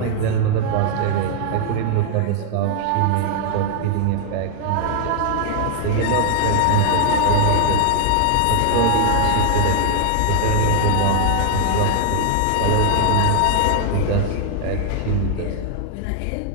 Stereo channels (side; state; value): both; different; correlation 0.00